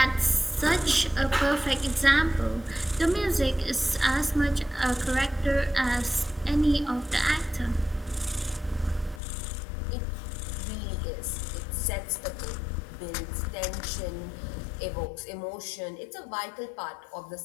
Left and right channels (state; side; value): drops out; right; at 9.2 s